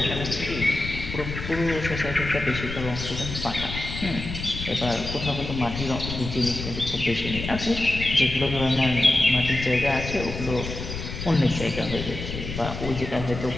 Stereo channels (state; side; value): noise; left; rumble, 7 dB below the sound